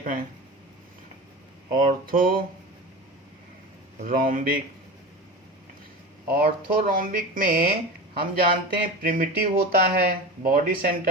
हैं? ऑर्थोरोम्बिक में हम जानते हैं प्रिमिटिव होता है, body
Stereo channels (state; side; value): normal; both; correlation 0.28